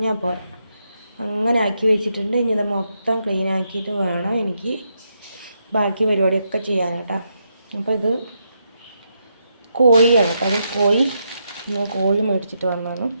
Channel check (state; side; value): inverted; both; correlation -0.81